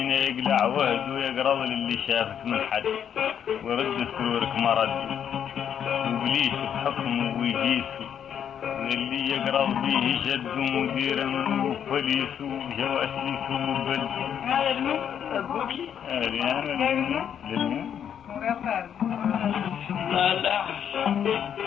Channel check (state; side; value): quieter; right; 8.8 dB